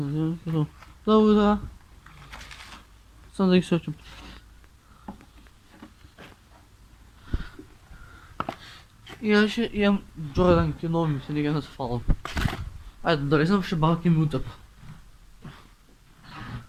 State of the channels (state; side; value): identical; both; correlation 1.00